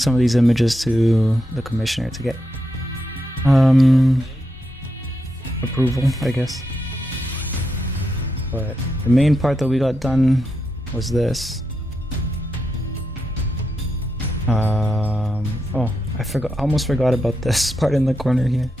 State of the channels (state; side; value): normal; both; correlation 0.85